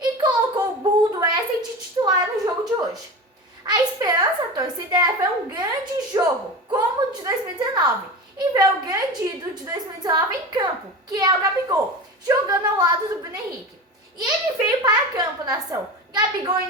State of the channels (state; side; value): normal; both; correlation 0.29